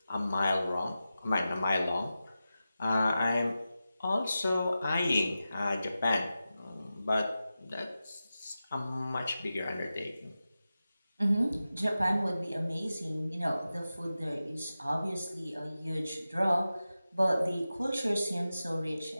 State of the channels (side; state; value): both; inverted; correlation -0.93